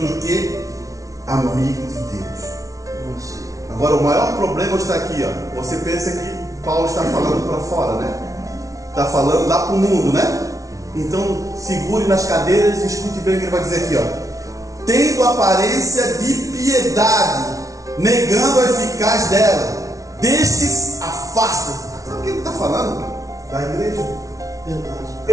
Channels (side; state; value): left; late; 0.17 ms